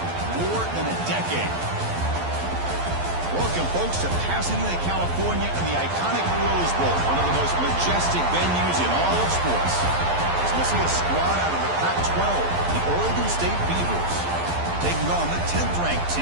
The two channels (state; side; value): late; left; 12 ms